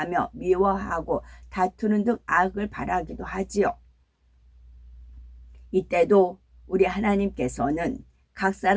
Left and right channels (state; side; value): identical; both; correlation 1.00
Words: 미워하고 다투는 등 악을 바라기도 하지요. 이때도 우리 하나님께서는 각